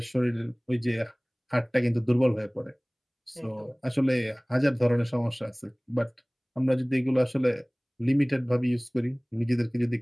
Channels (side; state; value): both; identical; correlation 1.00